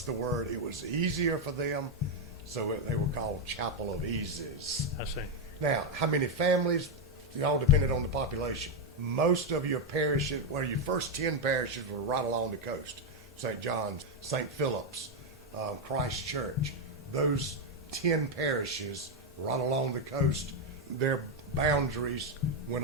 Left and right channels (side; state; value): both; normal; correlation 0.03